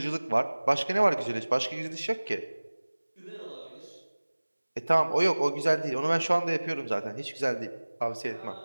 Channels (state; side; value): inverted; both; correlation -1.00